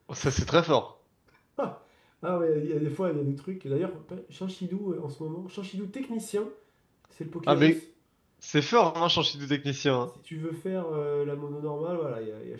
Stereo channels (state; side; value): identical; both; correlation 1.00